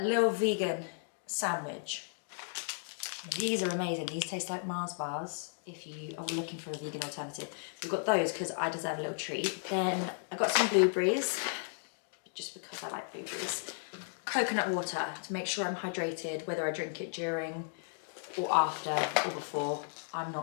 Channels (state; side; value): silent; right; digital silence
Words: little vegan sandwich. These are amazing. These taste like Mars bars. If you are looking for a vegan alternative, we've got those because I deserve a little treat. Then I got some blueberries, just because I like blueberries. Coconut water to make sure I'm hydrated, whether I drink it during or after or before, I'm